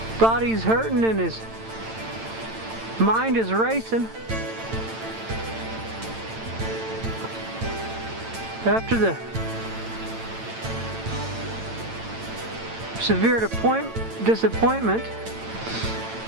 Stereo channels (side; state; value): left; late; 8.9 ms